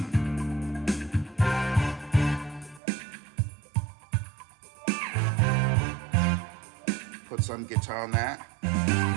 Put some guitar on that.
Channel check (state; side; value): drops out; left; at 2.8 s